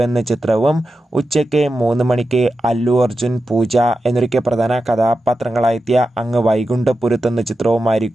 എന്ന ചിത്രവും, ഉച്ചയ്ക്ക് 3 മണിക്ക് അല്ലു അർജുൻ, പൂജ എന്നൊക്കെ പ്രധാന കഥാപാത്രങ്ങളായെത്തിയ അങ്ങ് വൈകുണ്ഠപുരത്ത് എന്ന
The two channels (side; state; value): both; normal; correlation 0.91